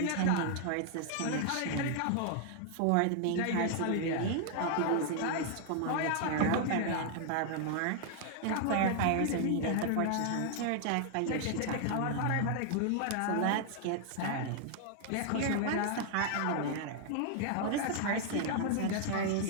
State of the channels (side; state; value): both; different; correlation 0.00